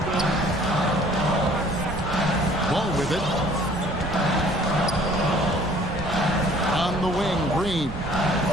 Ball with it. On the wing, Green.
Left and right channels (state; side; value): noise; right; rumble, 9 dB below the sound